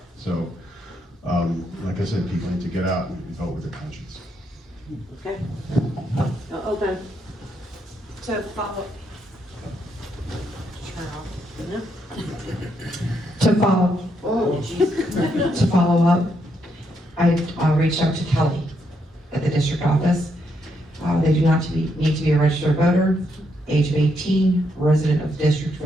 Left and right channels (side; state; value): both; normal; correlation 0.77